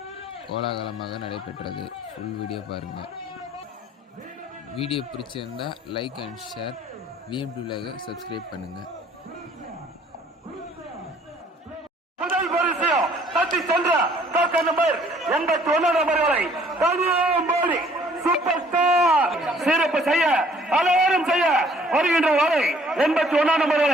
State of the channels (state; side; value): normal; both; correlation 0.59